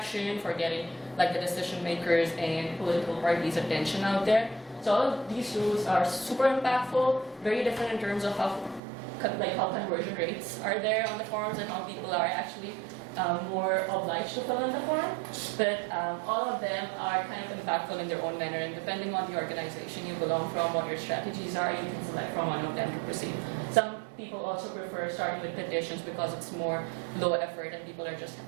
for getting like the decision makers and political parties' attention out there. So all of these tools are super impactful, very different in terms of how conversion rates are there on the forums and how people are actually more obliged to fill in the form, but all of them are kind of impactful in their own manner, and depending on the organization you belong from, what your strategies are, you can select from one of them to proceed. Some people also prefer starting with petitions because it's more low effort and people are just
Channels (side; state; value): left; drops out; at 8.8 s